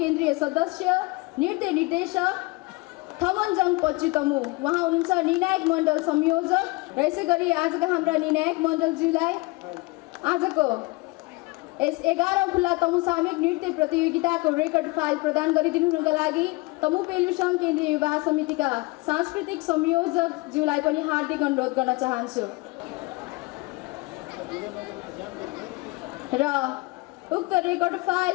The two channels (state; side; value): quieter; right; 24.8 dB